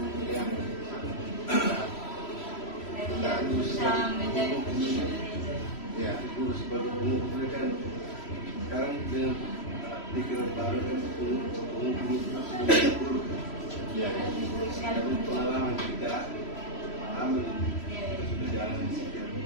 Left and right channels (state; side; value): late; right; 3.0 ms